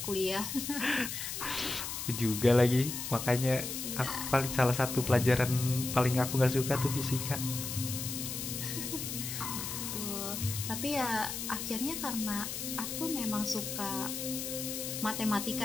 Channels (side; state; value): left; noise; hiss, 5 dB below the sound